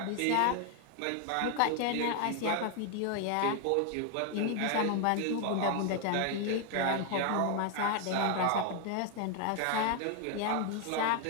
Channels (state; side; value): different; both; correlation 0.00